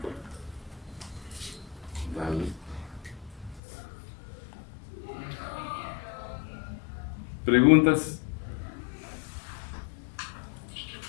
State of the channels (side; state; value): right; drops out; at 3.6 s